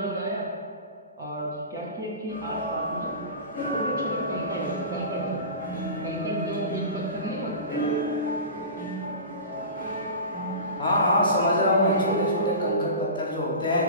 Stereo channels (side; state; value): both; inverted; correlation -0.32